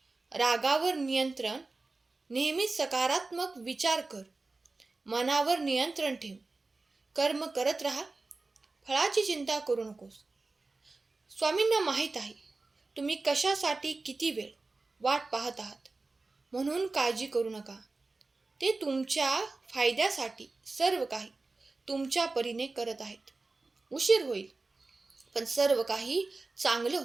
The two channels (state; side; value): quieter; left; 3.5 dB